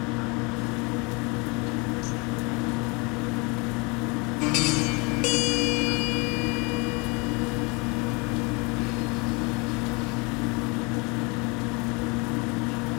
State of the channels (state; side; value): quieter; right; 29.1 dB